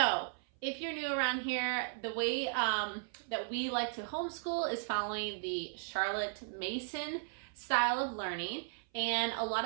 if you're new around here, the way that we like to homeschool is following the Charlotte Mason style of learning. And a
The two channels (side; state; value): left; silent; 54 dB below the other